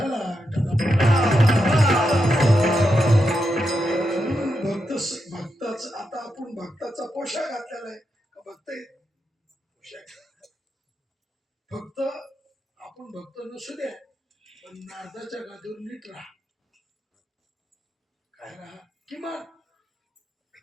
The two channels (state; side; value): normal; both; correlation 0.85